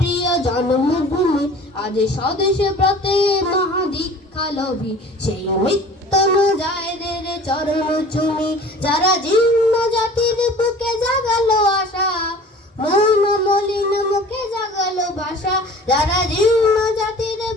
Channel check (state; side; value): normal; both; correlation 0.45